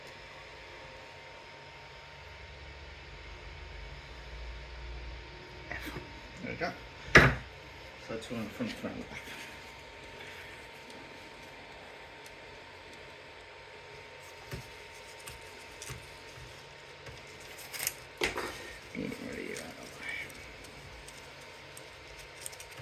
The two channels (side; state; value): both; identical; correlation 1.00